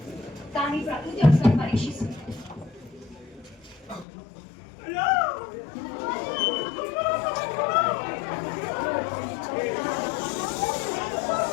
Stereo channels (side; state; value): right; drops out; at 4.0 s